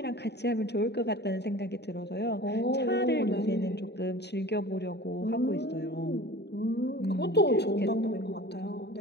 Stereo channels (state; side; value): late; right; 0.49 ms